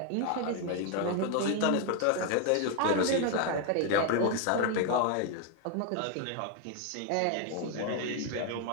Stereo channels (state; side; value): different; both; correlation 0.01